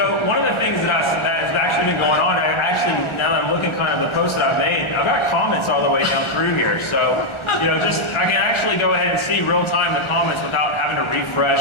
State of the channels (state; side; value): late; right; 1.4 ms